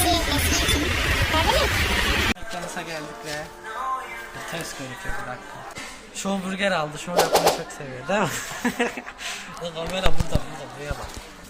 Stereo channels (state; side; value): identical; both; correlation 1.00